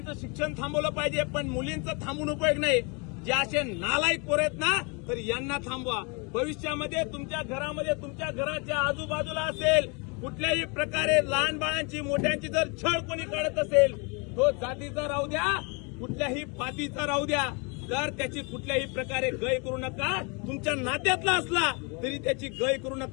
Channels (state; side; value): quieter; right; 32.2 dB